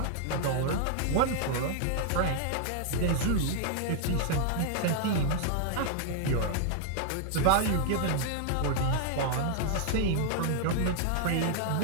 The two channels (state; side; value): different; both; correlation 0.00